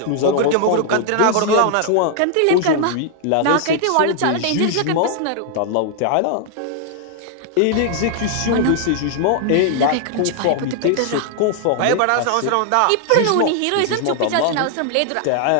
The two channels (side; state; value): both; different; correlation 0.00